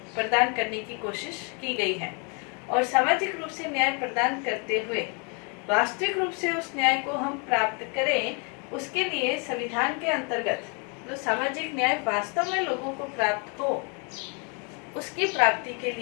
प्रदान करने की कोशिश की गई है और सामाजिक रूप से न्याय प्रदान करते हुए वास्तविक रूप से उस न्याय को हम प्राप्त करें, उसके लिए संविधान के अंतर्गत जो सामाजिक न्याय वास्तव में लोगों को प्राप्त हो, उसकी प्राप्ति के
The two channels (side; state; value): right; quieter; 35.2 dB